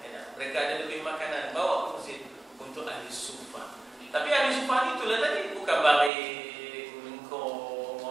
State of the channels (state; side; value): drops out; left; at 6.1 s